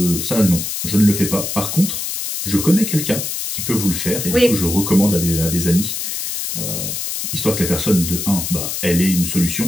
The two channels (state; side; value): noise; left; hiss, 4 dB below the sound